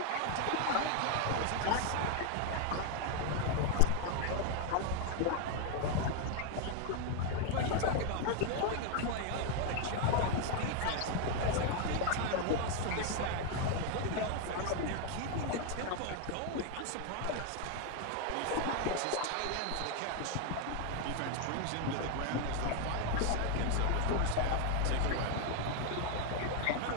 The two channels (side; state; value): both; different; correlation 0.01